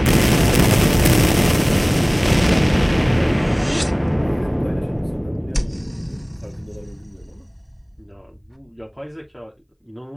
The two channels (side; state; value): both; identical; correlation 1.00